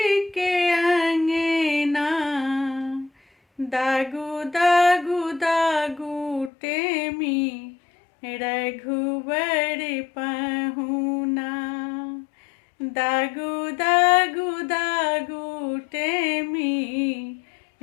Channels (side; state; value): right; drops out; at 6.5 s